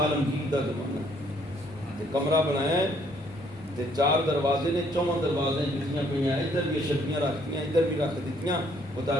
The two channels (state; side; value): normal; both; correlation 0.66